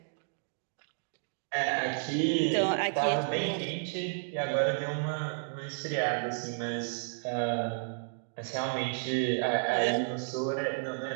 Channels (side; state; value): left; silent; digital silence